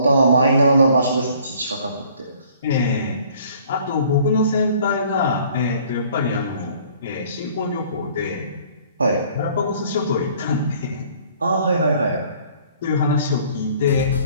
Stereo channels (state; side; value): inverted; both; correlation -0.56